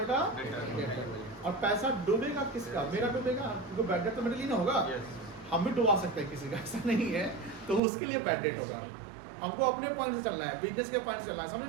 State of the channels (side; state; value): left; drops out; at 7.8 s